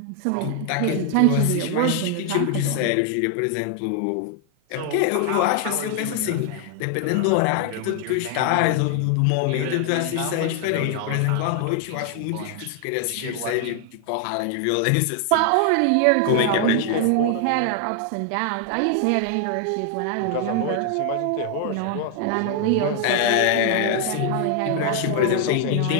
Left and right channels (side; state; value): both; different; correlation 0.00